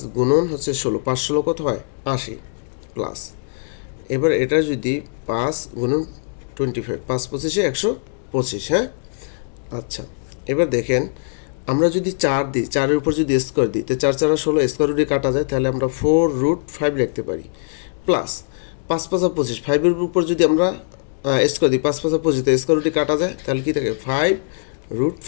গুণন হচ্ছে 16, 5 16 কত হয় 80 প্লাস, এবার এটা যদি 5 গুণন 25, 5 25 125, হ্যাঁ আচ্ছা এবার দেখেন আমরা যদি 4 দিই, 4-এর উপর যদি স্কোয়ার দিই তো 4 4 16, স্কোয়ার রুটে কাটা যায়, তাহলে আমরা 4 রুট 5 লিখতে পারি, প্লাস 5 5 25, 5-এর উপর যদি আমরা স্কোয়ার দিই 5 5 25, তো স্কোয়ার রুটে কাটা যায়, তাহলে কি থাকে 5 রুট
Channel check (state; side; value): silent; right; digital silence